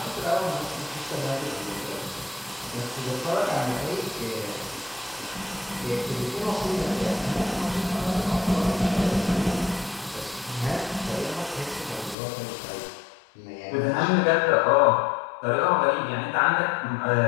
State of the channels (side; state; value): right; drops out; at 12.2 s